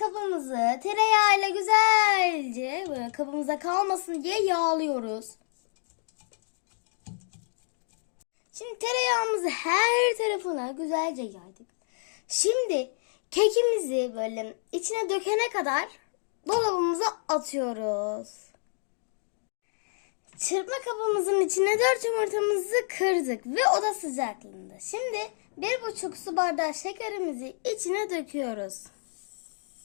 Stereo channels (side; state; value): right; silent; digital silence